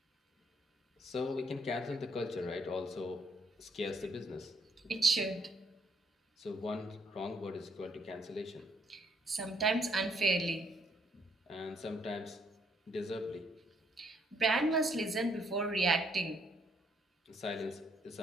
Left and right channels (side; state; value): both; normal; correlation 0.69